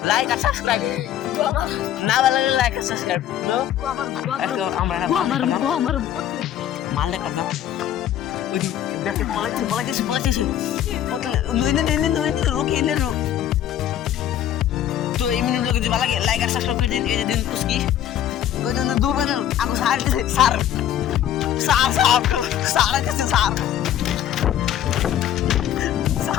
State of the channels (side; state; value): right; quieter; 11.1 dB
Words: লাইক আর সাবস্ক্রাইব না ভালো লাগে লাইক আর সাবস্ক্রাইব আমরা মাল দেখা দাও ওই দেখে পলাইছে রুকি এনে রুক তো এই মিনিট যদি ভালো লাগে লাইক আর সাবস্ক্রাইব করে দিন এই যে দিন পুস্কি ওই জন্য দুবার আগো স্যার